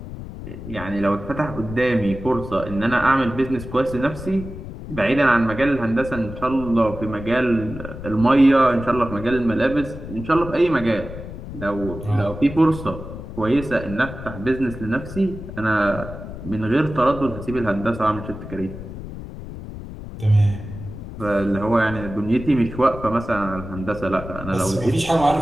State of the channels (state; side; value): noise; left; rumble, 11 dB below the sound